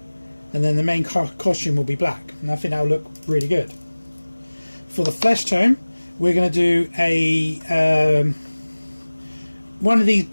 and then the main costume will be black, and I think that will look really good. For the flesh tone, we're going to do a one of these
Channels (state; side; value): inverted; both; correlation -1.00